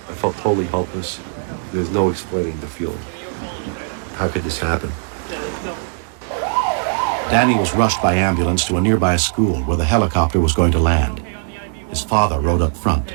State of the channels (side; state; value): left; silent; digital silence